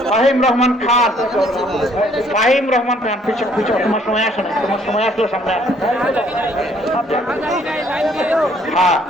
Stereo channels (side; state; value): both; normal; correlation 0.63